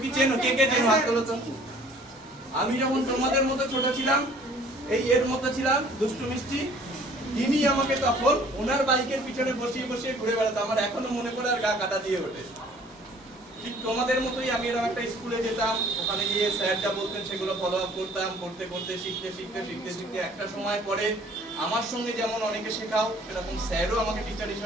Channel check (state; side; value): normal; both; correlation 0.54